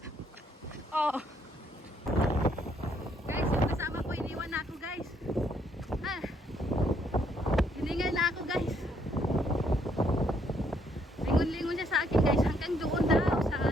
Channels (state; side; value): normal; both; correlation 0.70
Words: Oh. Guys, yung kasama ko iniwan na ako guys. Ah. Hiningal na ako guys. Lingon-lingon siya sa akin guys. Hanggang doon daw sa